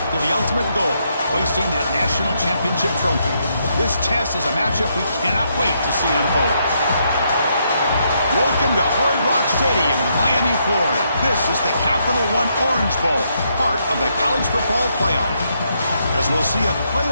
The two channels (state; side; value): inverted; both; correlation -0.76